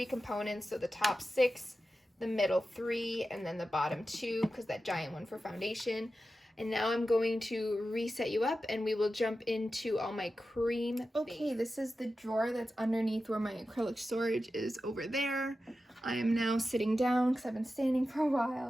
components, so the top 6, the middle 3, and then the bottom 2, because that giant one for foundation. And now I'm going to reset you up, and we will jump into all my cream. Okay, this is the drawer that's underneath where my acrylic storage is over there. I am now sitting down because I've been standing for a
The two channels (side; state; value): both; normal; correlation 0.92